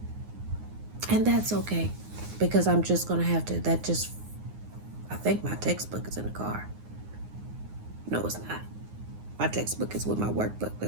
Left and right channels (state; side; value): late; left; 9.6 ms